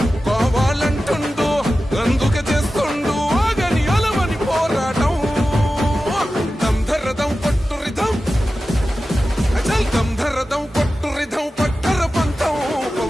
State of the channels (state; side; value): normal; both; correlation 0.94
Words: కావాలంటుండు, అందుకే చేస్తుండు ఆగని అలవని పోరాటం. దంధరదం కొట్టురిదం అచల్ దంధరదం కొట్టురిదం పట్టర పంతం